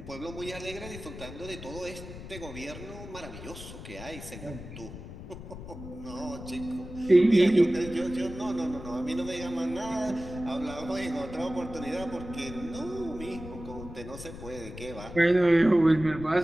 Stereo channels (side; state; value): left; noise; rumble, 12 dB below the sound